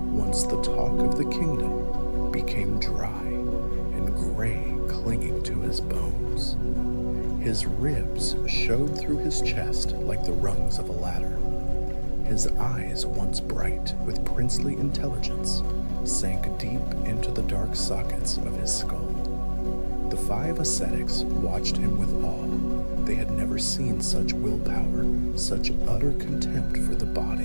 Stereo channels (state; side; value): inverted; both; correlation -1.00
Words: once the talk of the kingdom, became dry and gray, clinging to his bones. His ribs showed through his chest like the rungs of a ladder. His eyes, once bright with princely intelligence, sank deep into the dark sockets of his skull. The 5 ascetics watched him with awe. They had never seen such willpower, such utter contempt for the